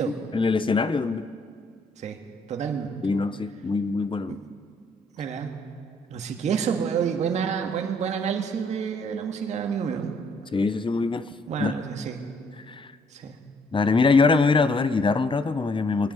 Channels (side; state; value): both; normal; correlation 0.66